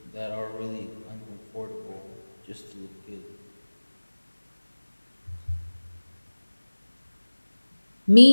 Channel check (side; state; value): both; inverted; correlation -1.00